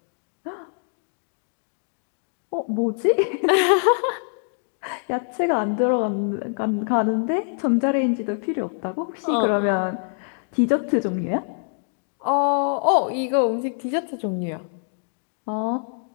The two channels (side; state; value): right; silent; 62 dB below the other